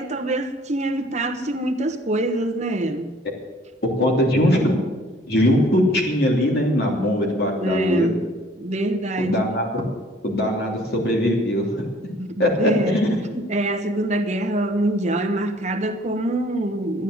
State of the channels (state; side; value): normal; both; correlation 0.56